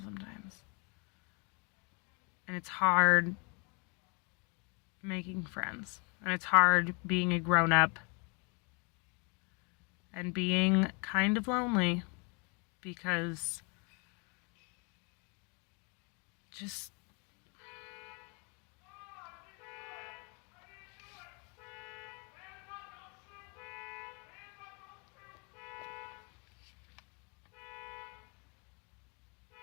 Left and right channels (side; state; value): right; quieter; 33.8 dB